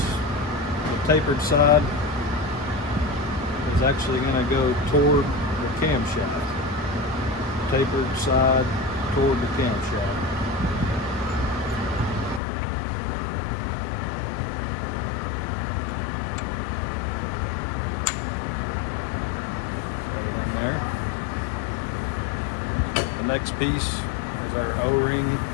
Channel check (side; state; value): right; drops out; at 12.4 s